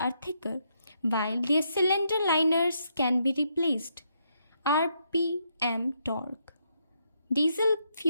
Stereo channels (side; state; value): both; inverted; correlation -0.77